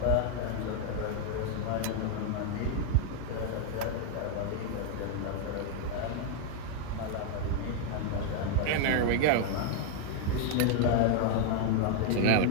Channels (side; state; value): both; different; correlation 0.00